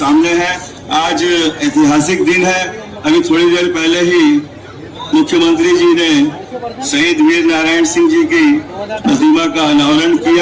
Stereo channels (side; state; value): both; identical; correlation 1.00